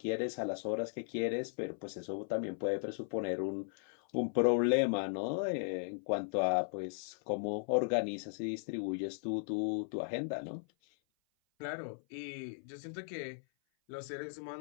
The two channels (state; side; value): silent; right; 53 dB below the other